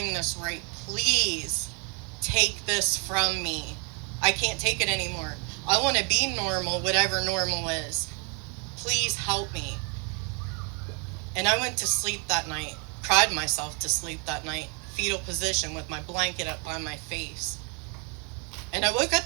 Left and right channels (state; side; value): quieter; left; 35.3 dB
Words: this right. Please take this from me. I can't take it anymore. I want to be normal, whatever normal is. Please help me. And I went to sleep that night, cried myself to sleep that night, fetal position with my blanket up by my face. And I woke